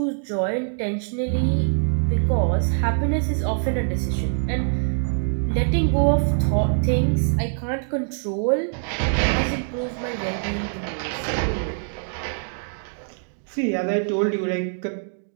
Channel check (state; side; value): silent; left; digital silence